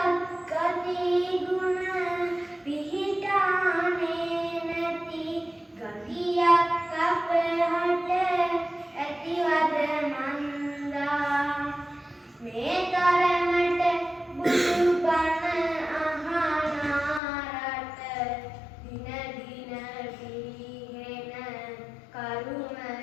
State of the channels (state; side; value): drops out; right; at 17.2 s